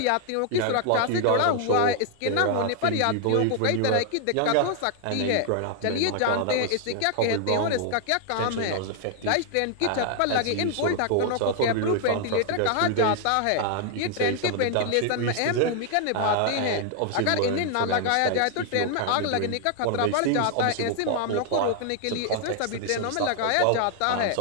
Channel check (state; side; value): different; both; correlation 0.00